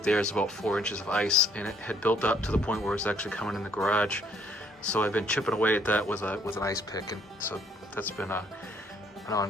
there is about 4 inches of ice, and it had built up to the point where it was actually coming in the garage. So I've been chipping away at that with an ice pick, and so that's been an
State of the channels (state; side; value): normal; both; correlation 0.65